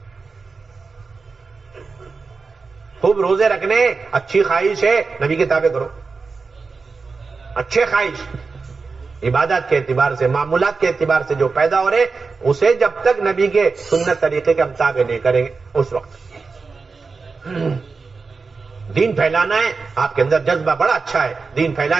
خوب روزے رکھنے اچھی خواہش ہے، نبی کے تابع کرو. اچھے خواہش عبادات کے اعتبار سے، معمولات کے اعتبار سے جو پیدا ہو رہے، اسے جب تک نبی کے سنت طریقے کے ہم تابع نہیں کریں گے اس وقت. دین پھیلانا ہے، آپ کے اندر جذبہ بڑا اچھا ہے، دین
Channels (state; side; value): quieter; left; 4.5 dB